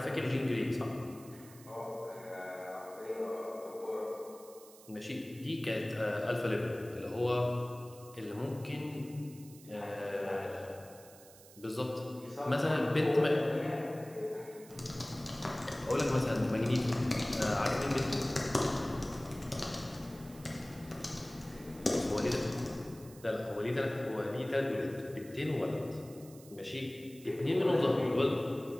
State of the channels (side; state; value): right; noise; hiss, 21 dB below the sound